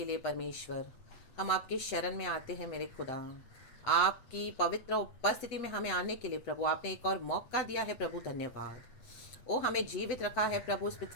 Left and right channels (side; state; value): right; late; 8.2 ms